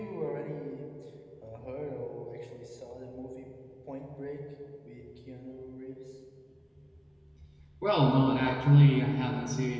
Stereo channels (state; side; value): identical; both; correlation 1.00